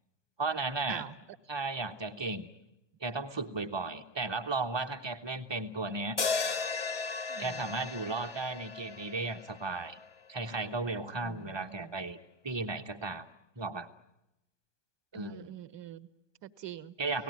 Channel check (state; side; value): late; left; 1.0 ms